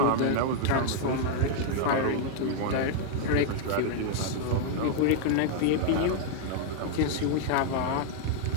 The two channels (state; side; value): different; both; correlation 0.00